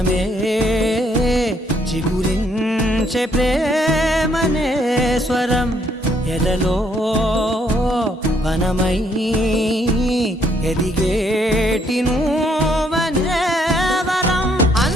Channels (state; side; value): normal; both; correlation 0.69